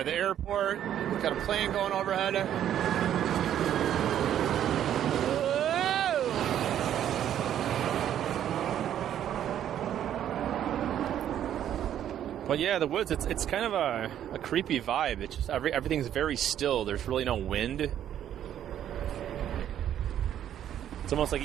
the airport. Got a plane going overhead. But yeah, the woods, it's kind of a creepy vibe. It's just everything's very still. There's really no wind. It's almost like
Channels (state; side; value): quieter; left; 10.6 dB